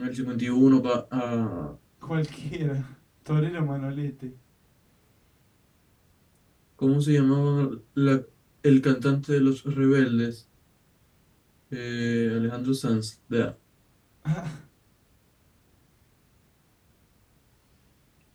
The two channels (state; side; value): identical; both; correlation 1.00